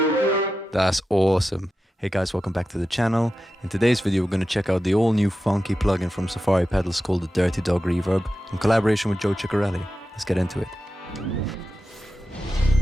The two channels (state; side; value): normal; both; correlation 0.92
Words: awesome. Hey guys, welcome back to the channel. In today's video we're going to check out the all new funky plugin from Safari Pedals called the Dirty Dog Reverb in collaboration with Joe Chiccarelli. Let's get into it.